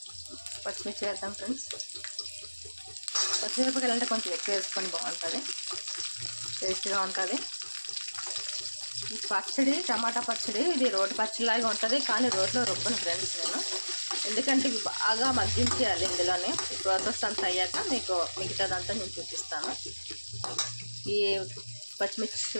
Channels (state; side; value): inverted; both; correlation -1.00